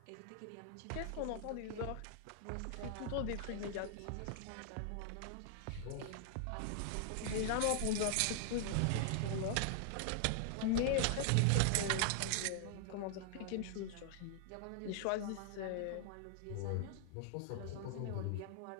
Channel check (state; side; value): different; both; correlation 0.00